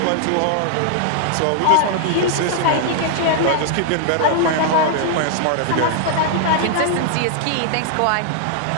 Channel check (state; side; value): different; both; correlation -0.01